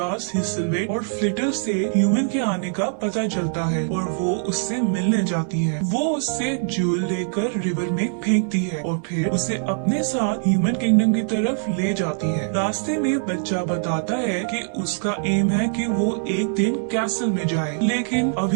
हिसलवेट और फ्लिटर से ह्यूमन के आने का पता चलता है और वो उससे मिलने जाती है। वो उससे ज्यूल लेकर रिवर में फेंकती है और फिर उसे अपने साथ ह्यूमन किंगडम की तरफ ले जाती है। रास्ते में बच्चा बताता है कि उसका एम है कि वो एक दिन कैसल में जाए, लेकिन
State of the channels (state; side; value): silent; left; 61 dB below the other